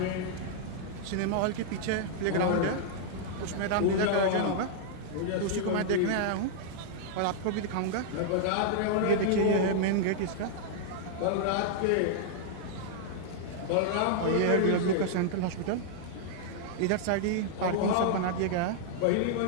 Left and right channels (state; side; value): different; both; correlation -0.01